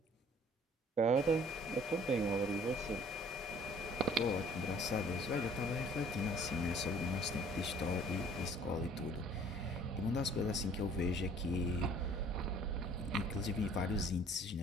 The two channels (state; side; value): normal; both; correlation 0.54